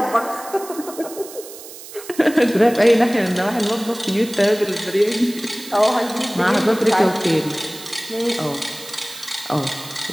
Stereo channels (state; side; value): noise; right; hiss, 15 dB below the sound